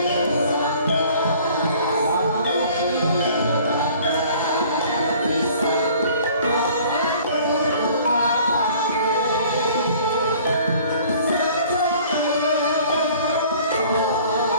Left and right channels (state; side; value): inverted; both; correlation -0.52